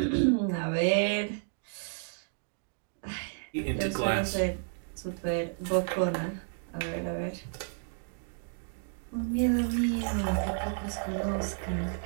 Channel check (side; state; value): left; silent; digital silence